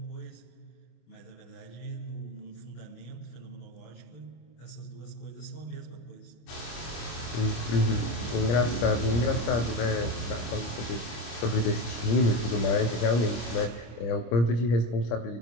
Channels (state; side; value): late; right; 25 ms